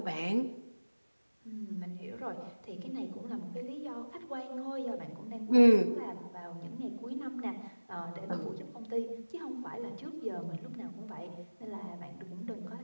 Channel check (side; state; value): both; inverted; correlation -1.00